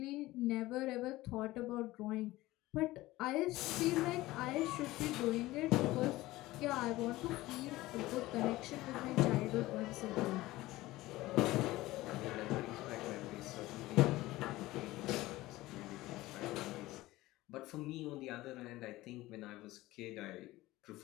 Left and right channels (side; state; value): right; quieter; 18.0 dB